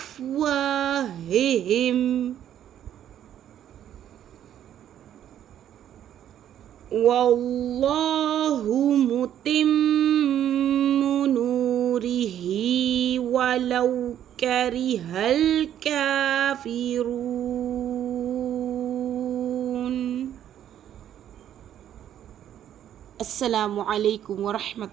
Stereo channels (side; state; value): left; quieter; 10.6 dB